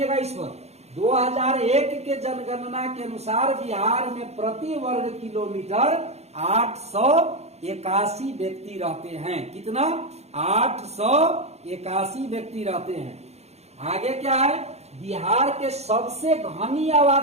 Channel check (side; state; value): left; late; 0.31 ms